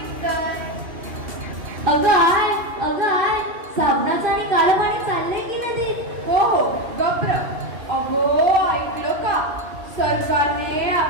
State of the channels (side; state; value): left; late; 2.7 ms